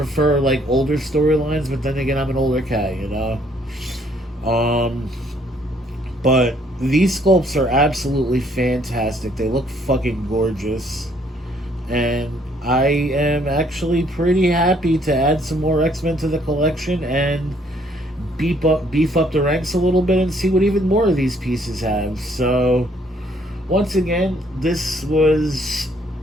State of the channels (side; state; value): both; normal; correlation 0.65